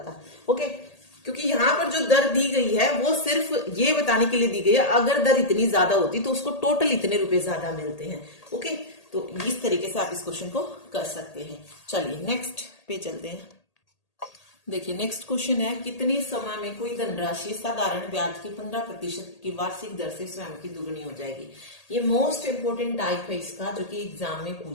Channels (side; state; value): right; late; 1.8 ms